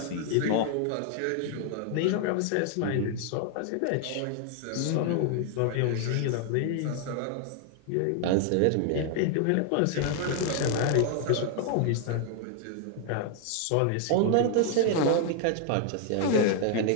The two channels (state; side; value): different; both; correlation 0.00